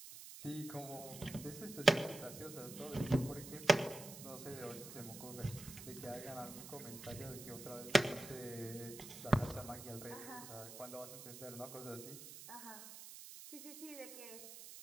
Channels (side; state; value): right; noise; hiss, 12 dB below the sound